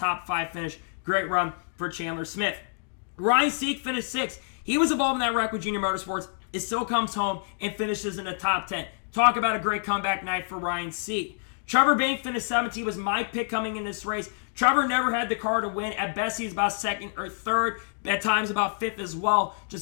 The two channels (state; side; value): silent; right; 60 dB below the other